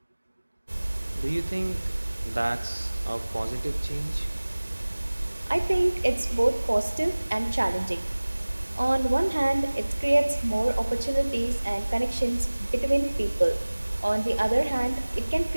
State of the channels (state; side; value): inverted; both; correlation -1.00